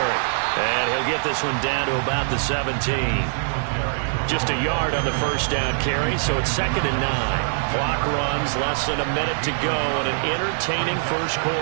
And he'll get this one down to about the 17. Just a yard on the first down carry, so it's 2nd and 9. Clock runs, less than a minute to go in an entertaining first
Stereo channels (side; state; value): left; silent; digital silence